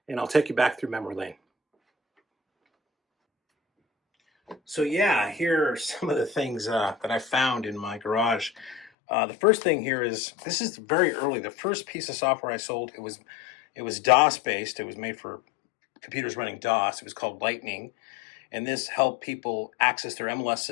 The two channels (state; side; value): drops out; right; at 8.9 s